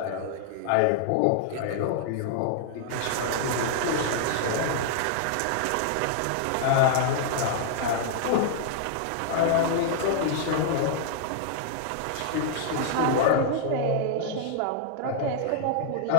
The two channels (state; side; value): different; both; correlation -0.01